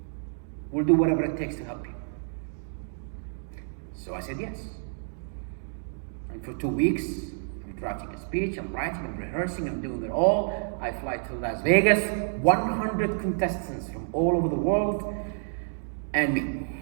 We'll do whatever it takes to help you. So I said yes. And for 2 weeks, I'm drafting a speech, I'm writing, I'm rehearsing, I'm doing it all. I fly to Las Vegas, 100 contestants from all over the world, and me.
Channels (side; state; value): left; silent; digital silence